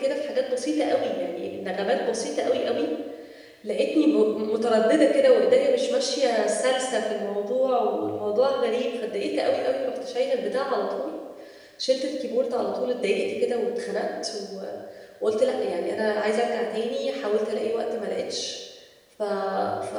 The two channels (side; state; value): both; identical; correlation 1.00